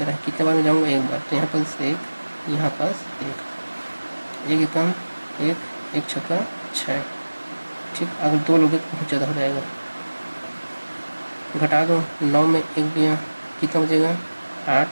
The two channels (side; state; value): both; inverted; correlation -1.00